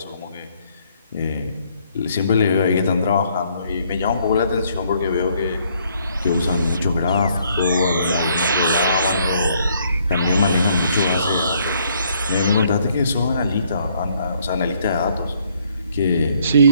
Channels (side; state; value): both; inverted; correlation -0.67